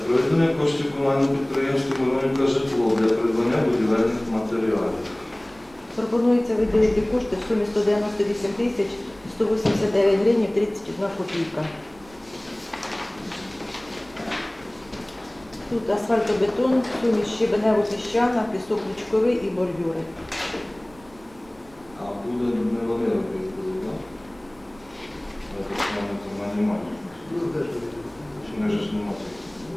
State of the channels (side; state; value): right; noise; rumble, 26 dB below the sound